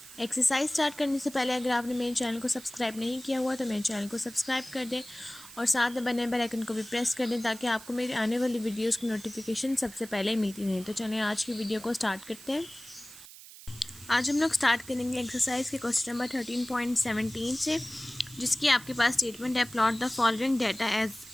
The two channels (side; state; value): right; noise; hiss, 17 dB below the sound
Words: एक्सरसाइज स्टार्ट करने से पहले अगर आपने मेरे चैनल को सब्सक्राइब नहीं किया हुआ तो मेरे चैनल को सब्सक्राइब कर दें और साथ में बने बेल आइकन को भी प्रेस कर दें ताकि आपको मेरी आने वाली वीडियोज़ की नोटिफिकेशन सबसे पहले मिलती रहे। तो चलिए आज की वीडियो को स्टार्ट करते हैं। आज हम लोग स्टार्ट करेंगे एक्सरसाइज के क्वेश्चन नंबर 13.17 से, जिसकी आपके पास स्टेटमेंट है plot the following data as